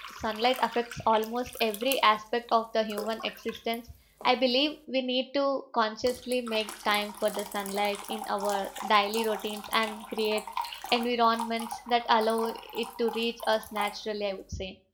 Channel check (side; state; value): both; identical; correlation 1.00